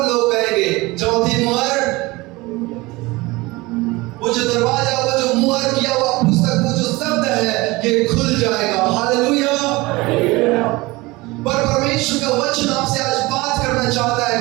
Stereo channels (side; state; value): left; quieter; 22.0 dB